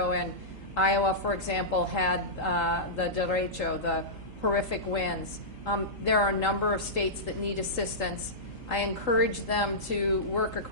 and Iowa, for example, had the derecho, the horrific winds. There are a number of states that need assistance. I encourage them to work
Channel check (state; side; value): normal; both; correlation -0.15